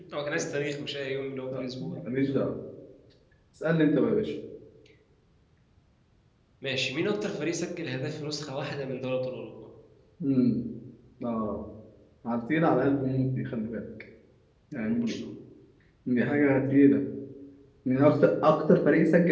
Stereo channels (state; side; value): identical; both; correlation 1.00